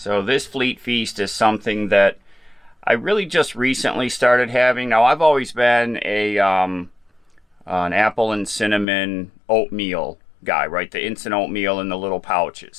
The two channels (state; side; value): drops out; right; at 8.8 s